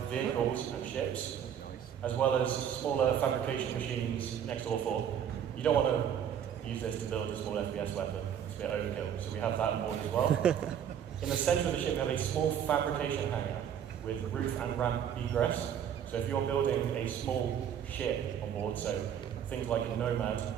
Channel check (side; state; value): left; quieter; 9.0 dB